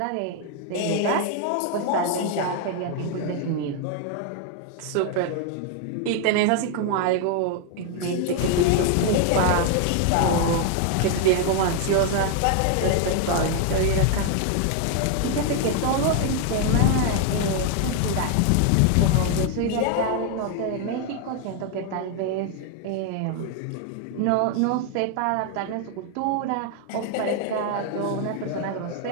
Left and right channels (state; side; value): different; both; correlation 0.00